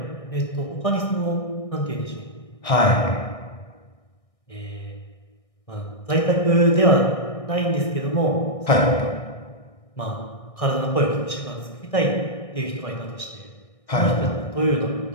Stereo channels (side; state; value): right; late; 1.6 ms